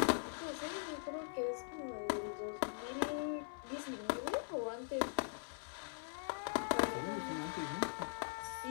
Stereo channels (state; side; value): silent; right; digital silence